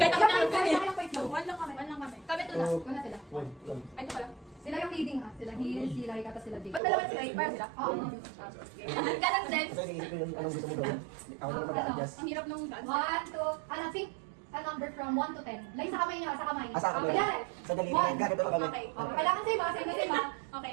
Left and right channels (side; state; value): left; drops out; at 6.8 s